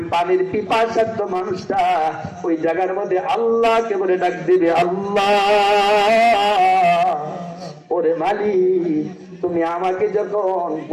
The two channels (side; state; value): both; identical; correlation 1.00